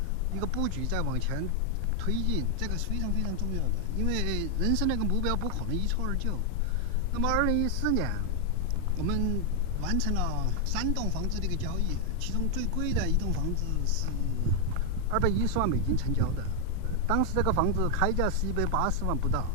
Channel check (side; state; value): both; different; correlation 0.00